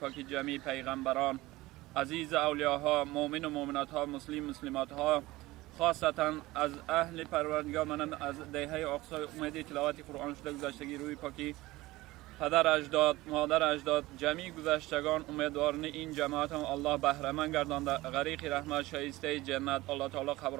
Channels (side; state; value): left; quieter; 19.0 dB